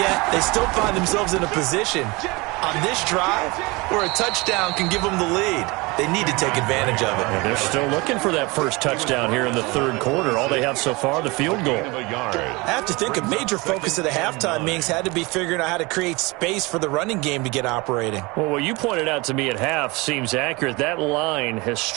they still find themselves in a position on this drive where a touchdown can give them the lead. They need to take advantage of it. And they're still looking for that first touchdown here in the third quarter. All they have so far, the field goal. I have to think a major focus of the halftime meetings had to be figuring out how to create space for the running game to get operating. Well, what you pointed out to me at half seems accurate. That line has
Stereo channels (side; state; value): left; quieter; 24.8 dB